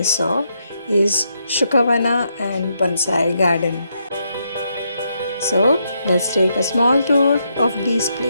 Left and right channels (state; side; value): inverted; both; correlation -0.79